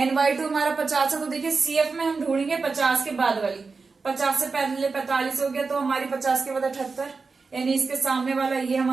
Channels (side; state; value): left; quieter; 4.4 dB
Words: हमारा 50 है, तो देखिए CF में हम ढूंढेंगे 50 के बाद वाली। 50 से पहले 45 हो गया, तो हमारी 50 के बाद 78, यानी इसके सामने वाला ये